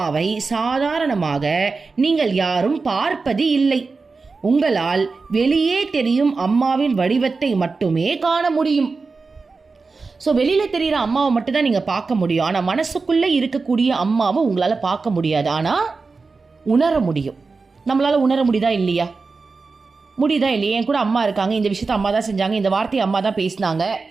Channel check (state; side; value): quieter; left; 4.3 dB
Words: சாதாரணமாக நீங்கள் யாரும் பார்ப்பது இல்லை. உங்களால் வெளியே தெரியும் அம்மாவின் வடிவத்தை மட்டுமே காண முடியும். ஸோ வெளியில் தெரிகிற அம்மாவை மட்டும்தான் நீங்கள் பார்க்க முடியும். ஆனால் மனசுக்குள்ளே இருக்கக்கூடிய அம்மாவை உங்களால் பார்க்க முடியாது, ஆனால் உணர முடியும். நம்மளால் உணர முடியுதா இல்லையா? முடியுதா இல்லையா? என் கூட அம்மா இருக்காங்க, இந்த விஷயத்த அம்மா தான் செஞ்சாங்க, இந்த வார்த்தையை அம்மா தான் பேசினாங்க.